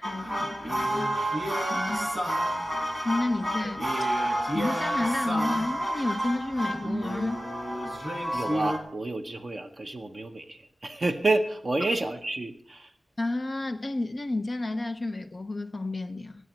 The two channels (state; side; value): normal; both; correlation 0.95